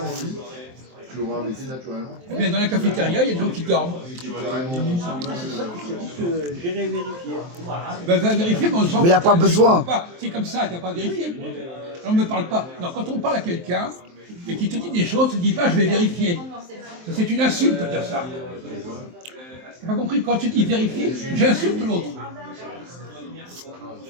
lui, tu l'auras invité naturellement. Eh bien, dans la cafétéria, il y a des gens qui dorment. C'est ça que je te dis que j'irai vérifier. Ben, va vérifier, mais on s'en Mais il n'y a pas besoin. C'est comme ça, tu n'as pas vérifié. On ne me parle pas. Non, quand on parle à quelqu'un et qu'il te dit des choses, tu ne dis pas je vais vérifier. Ça, c'est une insulte de dire ça. Tu n'as pas compris? Quand tu dis vérifier, j'insulte l'autre.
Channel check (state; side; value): late; left; 23 ms